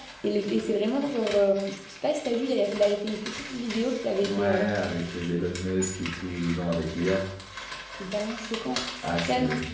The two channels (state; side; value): identical; both; correlation 1.00